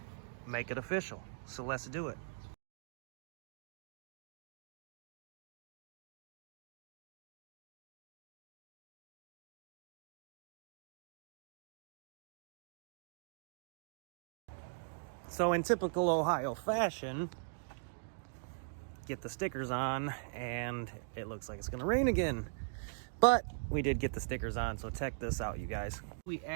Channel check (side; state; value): left; silent; digital silence